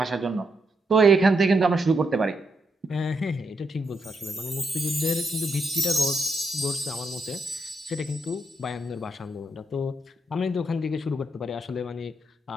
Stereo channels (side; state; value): both; normal; correlation 0.80